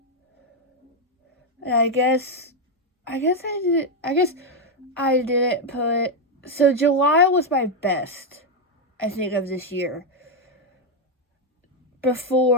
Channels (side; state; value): both; normal; correlation 0.03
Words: And I guess I didn't put, so July was my best, I think, of this year.